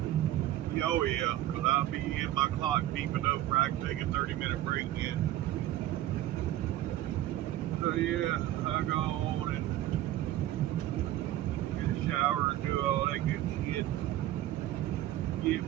Oh yeah, because I'll be in my clock beeping up where I can take a 30-minute break in. So yeah, I go on and get a shower and do all that good shit. Get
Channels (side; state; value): left; quieter; 14.0 dB